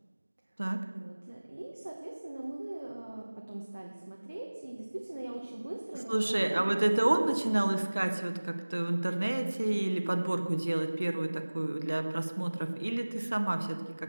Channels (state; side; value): inverted; both; correlation -1.00